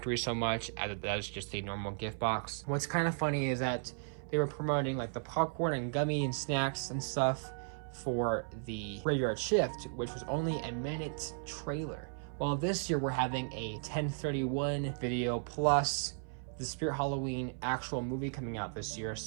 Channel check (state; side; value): silent; left; 54 dB below the other